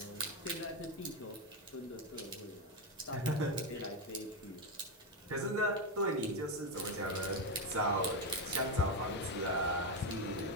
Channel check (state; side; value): normal; both; correlation 0.09